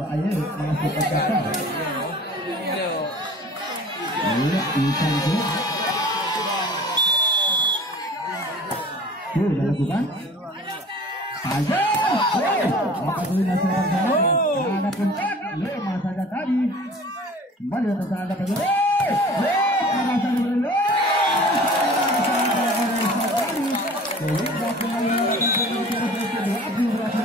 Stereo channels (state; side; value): normal; both; correlation 0.44